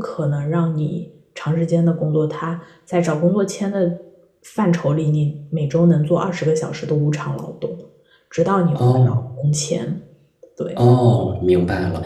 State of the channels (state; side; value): identical; both; correlation 1.00